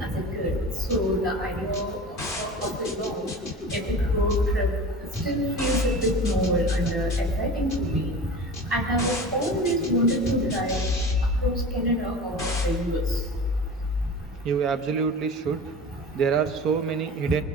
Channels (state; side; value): normal; both; correlation 0.35